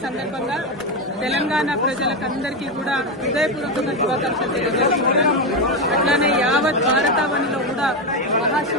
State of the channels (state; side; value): normal; both; correlation 0.11